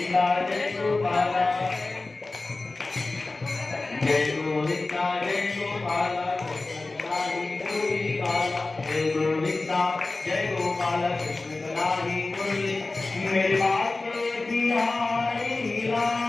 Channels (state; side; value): quieter; right; 3.4 dB